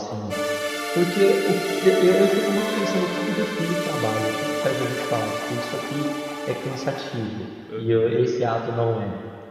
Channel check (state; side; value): identical; both; correlation 1.00